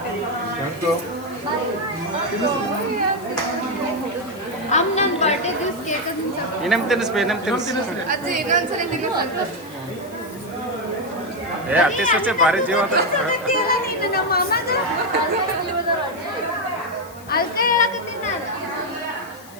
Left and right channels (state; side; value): noise; left; hiss, 21 dB below the sound